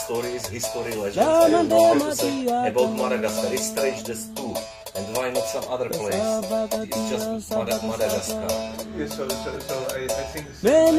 history, legends, I don't know how to say, about Madagascar. It's strange, there's two. And why not some other place? It's just Madagascar. Yeah, so I think these are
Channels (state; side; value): identical; both; correlation 1.00